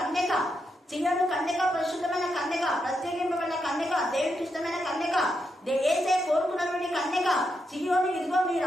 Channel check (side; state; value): both; normal; correlation 0.83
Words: సియోను కన్యక పరిశుద్ధమైన కన్యక, ప్రత్యేకింపబడిన కన్యక, దేవుడికి ఇష్టమైన కన్యక, ఏసే కోరుకున్నటువంటి కన్యక. సియోను, ఇదిగో మీ